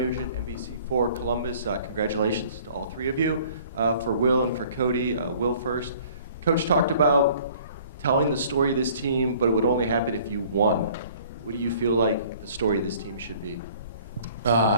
NBC4 Columbus. Congratulations to all 3 of you. For Will and for Cody, Will first. Coach talked about telling the story of this team, but it would only happen if you won. What do you feel like the story of this team should be?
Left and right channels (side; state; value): both; inverted; correlation -0.53